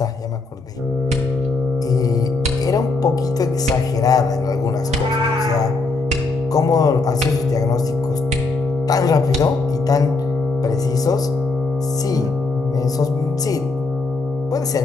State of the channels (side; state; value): right; quieter; 3.7 dB